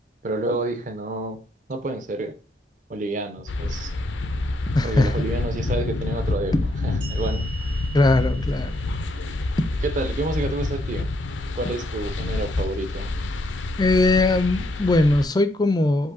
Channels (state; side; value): normal; both; correlation 0.74